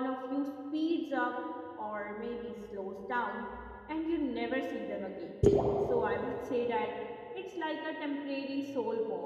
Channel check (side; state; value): both; identical; correlation 1.00